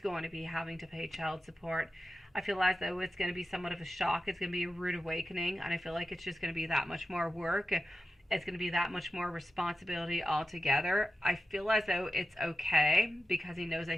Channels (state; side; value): normal; both; correlation 0.91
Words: going to be having to pay child support. I feel as though it's going to be somewhat of a shock. It's going to be a rude awakening, and I feel like it's just going to be that much more work. It's going to be that much more responsibility altogether. I feel as though it's okay, because he knows that